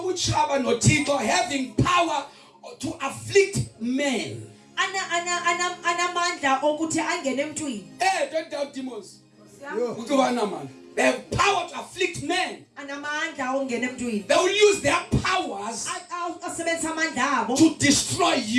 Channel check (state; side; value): identical; both; correlation 1.00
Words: noThixo having power to afflict men. Anamandla okuthi angene emntwini. Don't doubt demons. Yo. They have power to afflict men. Anamandla ongena emntwini. They will use their powers Asebenzisa amandla abo to destroy